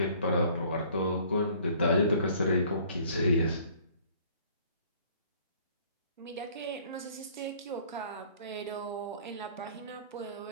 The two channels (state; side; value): inverted; both; correlation -0.56